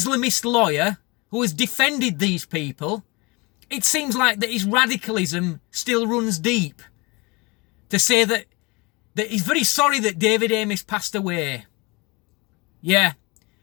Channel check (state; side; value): quieter; right; 26.1 dB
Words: lawyer who has defended these people. It seems like that his radicalism still runs deep. To say that he's very sorry that David Amess passed away. Yeah.